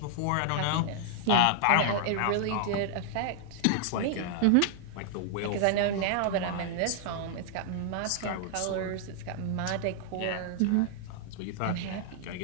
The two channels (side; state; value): both; different; correlation -0.01